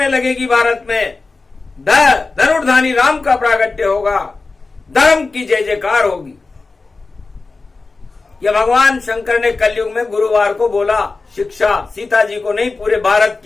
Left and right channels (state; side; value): quieter; right; 3.8 dB